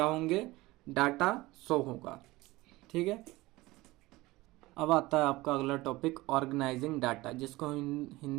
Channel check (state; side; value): quieter; left; 19.8 dB